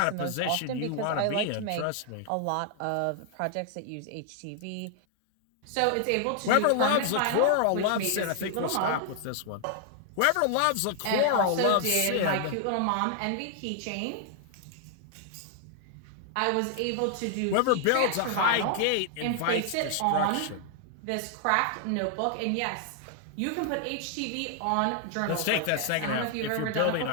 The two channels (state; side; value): different; both; correlation 0.00